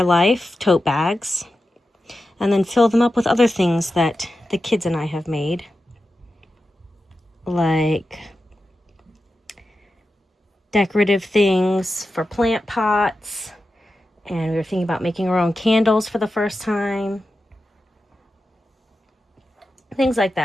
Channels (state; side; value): normal; both; correlation 0.91